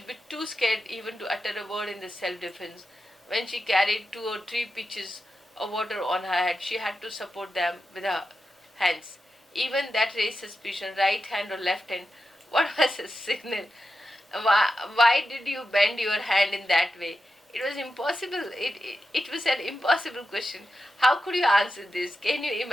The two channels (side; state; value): both; normal; correlation 0.90